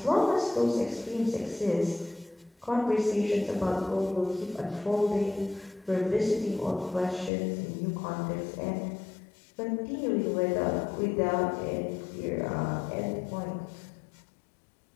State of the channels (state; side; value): drops out; right; at 7.3 s